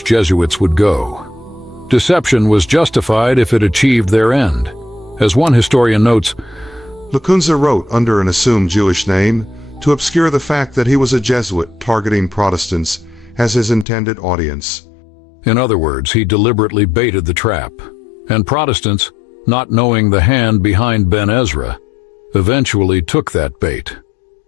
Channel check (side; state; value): right; drops out; at 13.9 s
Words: Jesuits would go. Deception was justified if it achieved their end. As one historian notes, Lacunza wrote under an assumed Jewish name to obscure the fact that he was a Jesuit targeting Protestants as his intended audience. In other words, he deliberately baited the trap, and Protestants, not knowing the hand behind Ben Ezra, eventually took that bait.